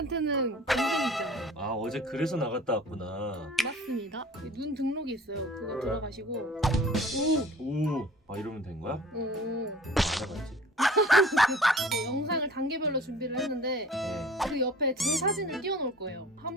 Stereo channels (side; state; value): both; normal; correlation 0.46